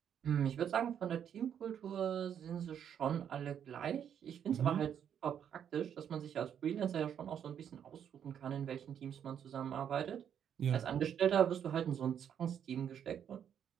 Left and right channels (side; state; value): left; quieter; 8.8 dB